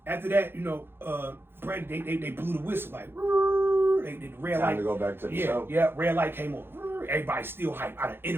after that, Brandy, they blew the whistle, like, the red light. Time to go back to the show. Yeah, red light came on. Everybody still hyped. I done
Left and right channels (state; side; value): late; left; 0.10 ms